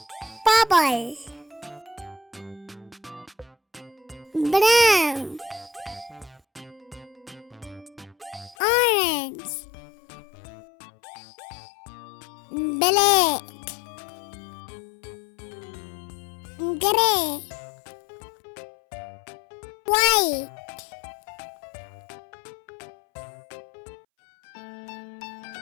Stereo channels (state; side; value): drops out; right; at 8.6 s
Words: purple, brown, orange, black, grey, white.